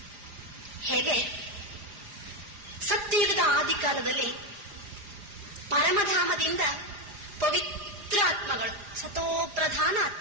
ಹೇಗೆ ಸತ್ಯಯುಗದ ಆದಿಕಾಲದಲ್ಲಿ ಪರಮಧಾಮದಿಂದ ಪವಿತ್ರ ಆತ್ಮಗಳು, ಸತೋಪ್ರಧಾನ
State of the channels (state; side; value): late; left; 4.9 ms